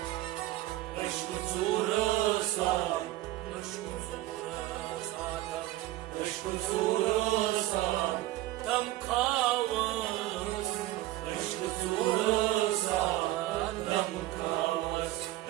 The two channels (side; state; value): left; quieter; 16.1 dB